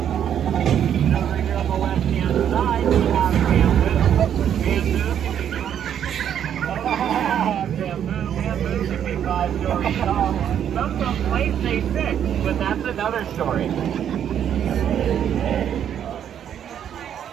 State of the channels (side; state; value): left; quieter; 9.4 dB